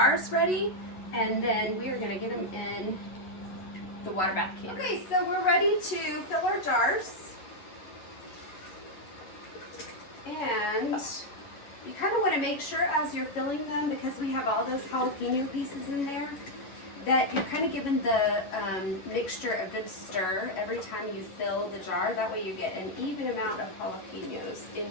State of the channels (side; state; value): right; late; 11 ms